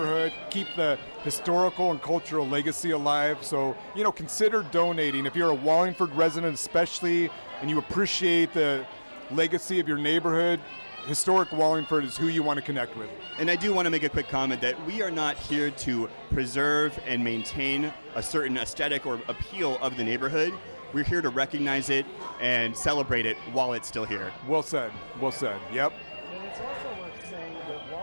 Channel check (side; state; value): both; inverted; correlation -1.00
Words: keep the historical and cultural legacy alive. So, consider donating. If you're a Wallingford resident especially, and you appreciate the legacy of your neighborhood, Historic Wallingford is who you want to connect with. And I do want to make a quick comment that we are not here to preserve and maintain a certain aesthetic or appeal of the neighborhood. We're here to recognize it and celebrate it while it's still here. Well said. Well said. Yep. And it's also worth saying that